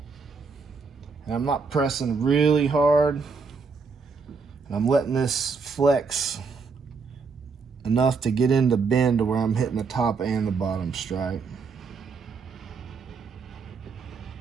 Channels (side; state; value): left; quieter; 4.9 dB